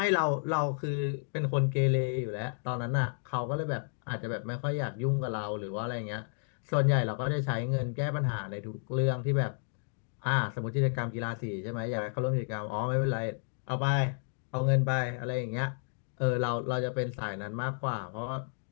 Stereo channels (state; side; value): silent; right; digital silence